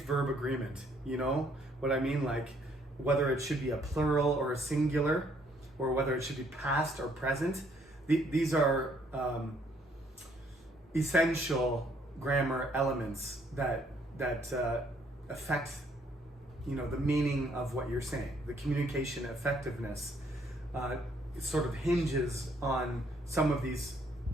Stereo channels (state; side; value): normal; both; correlation 0.67